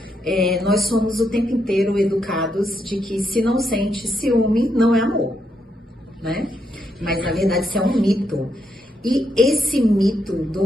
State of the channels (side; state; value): both; normal; correlation 0.80